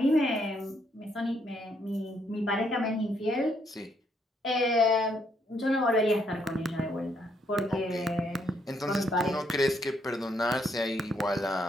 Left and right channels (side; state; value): both; normal; correlation 0.73